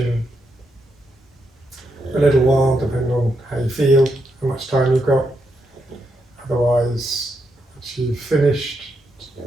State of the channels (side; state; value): both; normal; correlation 0.81